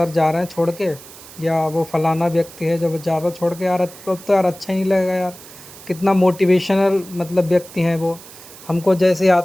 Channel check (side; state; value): right; noise; hiss, 18 dB below the sound